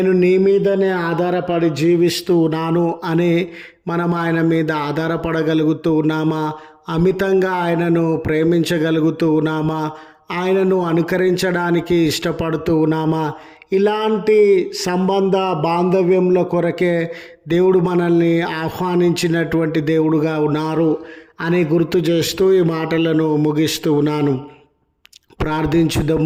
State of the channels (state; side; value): identical; both; correlation 1.00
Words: నీ మీదనే ఆధారపడి జీవిస్తూ ఉన్నాను అని మనం ఆయన మీద ఆధారపడగలుగుతూ ఉన్నామా? అమితంగా ఆయనను ప్రేమించగలుగుతూ ఉన్నామా? ఆయనను అనుకరించడానికి ఇష్టపడుతూ ఉన్నామా? ఇలాంటి సంబంధ బాంధవ్యంల కొరకే దేవుడు మనల్ని ఆహ్వానించినటువంటి దేవుడుగా ఉన్నారు అని గుర్తు చేస్తూ ఈ మాటలను ముగిస్తూ ఉన్నాను.